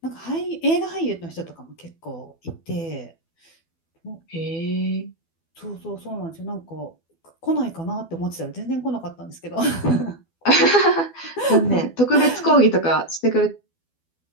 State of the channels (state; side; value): late; right; 12 ms